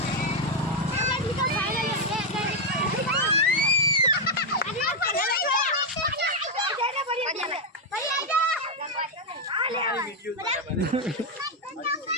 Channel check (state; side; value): normal; both; correlation 0.01